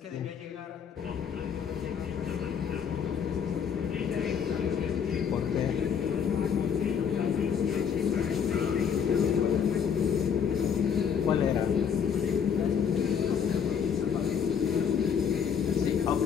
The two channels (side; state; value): right; quieter; 7.4 dB